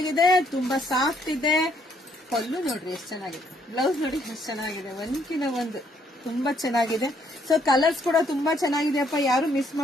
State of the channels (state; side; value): normal; both; correlation 0.69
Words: ತುಂಬಾ ಸಾಫ್ಟ್ ಇದೆ. ಪಲ್ಲು ನೋಡ್ರಿ ಎಷ್ಟು ಚೆನ್ನಾಗಿದೆ, ಬ್ಲೌಸ್ ನೋಡಿ ಎಷ್ಟು ಚೆನ್ನಾಗಿದೆ, ಒಂದ್ಕಿನ ಒಂದು ತುಂಬಾ ಚೆನ್ನಾಗಿದೆ. ಸೊ ಕಲರ್ಸ್ ಕೂಡ ತುಂಬಾ ಚೆನ್ನಾಗಿದೆಯಪ್ಪ, ಯಾರು ಮಿಸ್